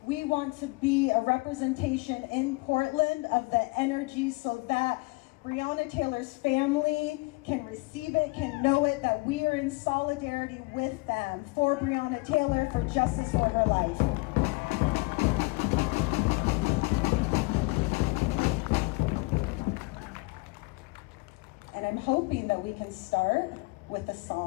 We want to be a representation in Portland of the energy so that Breonna Taylor's family can receive it, can know it, that we are in solidarity with them for Breonna Taylor, for justice for her life. And I'm hoping that we can start with a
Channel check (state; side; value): quieter; right; 26.3 dB